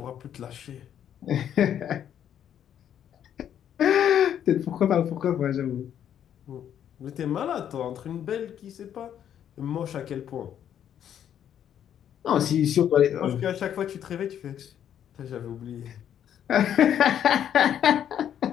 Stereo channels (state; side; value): quieter; right; 9.7 dB